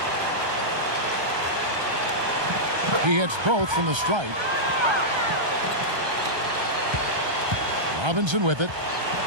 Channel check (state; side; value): late; left; 1.3 ms